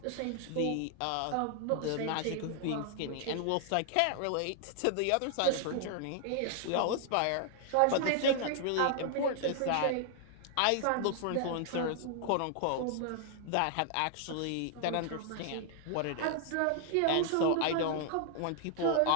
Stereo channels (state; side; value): different; both; correlation 0.00